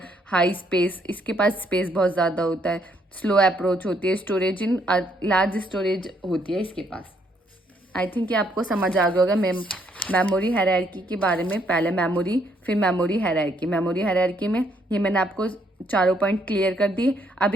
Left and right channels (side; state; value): both; normal; correlation 0.71